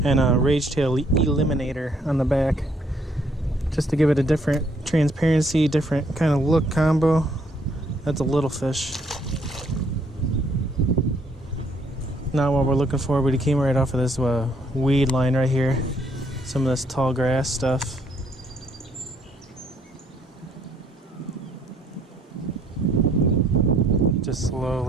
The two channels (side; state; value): both; normal; correlation 0.67